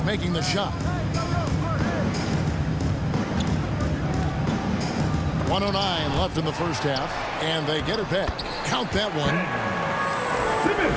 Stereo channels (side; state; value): both; identical; correlation 1.00